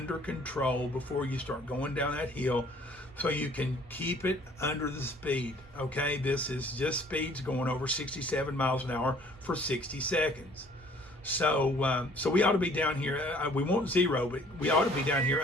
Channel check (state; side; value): normal; both; correlation 0.56